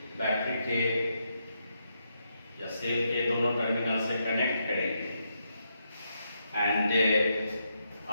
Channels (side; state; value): both; inverted; correlation -0.81